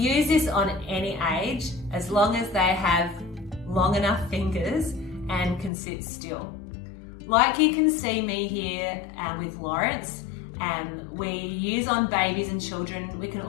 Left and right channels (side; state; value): right; drops out; at 5.7 s